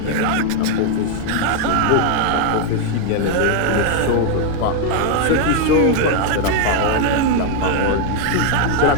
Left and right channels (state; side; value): different; both; correlation 0.01